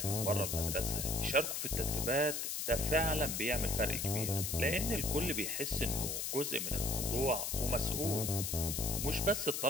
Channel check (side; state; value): left; noise; hiss, 2 dB below the sound